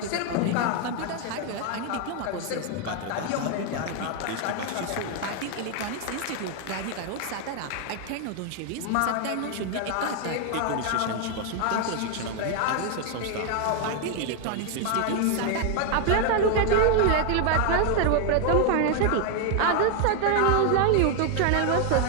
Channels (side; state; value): both; different; correlation 0.00